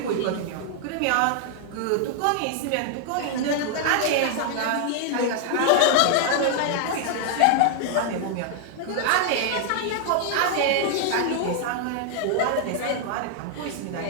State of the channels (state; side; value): different; both; correlation 0.00